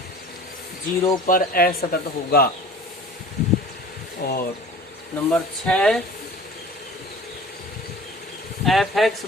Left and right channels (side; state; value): both; normal; correlation 0.43